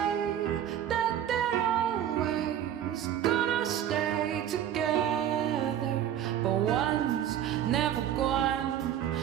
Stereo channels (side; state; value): left; quieter; 10.5 dB